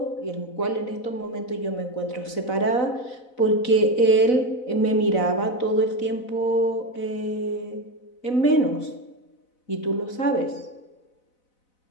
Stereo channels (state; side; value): late; right; 4.0 ms